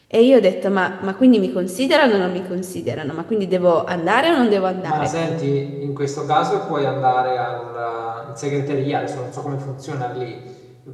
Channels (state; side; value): identical; both; correlation 1.00